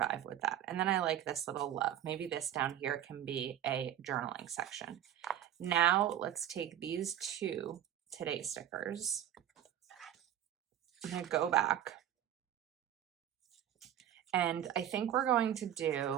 with that. And then I like this little love. Maybe this down here can be a journaling section. Now let's take these two today stickers. I'm going to go back. And I think we're going to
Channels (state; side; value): quieter; left; 11.0 dB